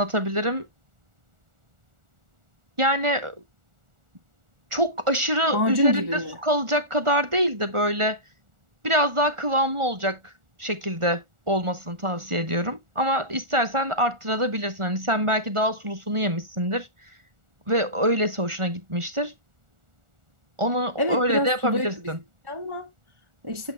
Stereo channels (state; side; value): late; left; 1.4 ms